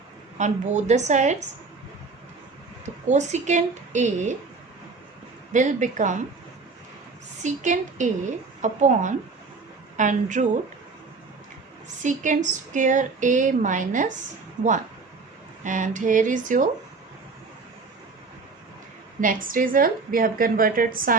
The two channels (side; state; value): left; quieter; 4.3 dB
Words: on both the sides, the cosecant A will become secant A upon under root secant square A minus 1. And here is your next result. We have converted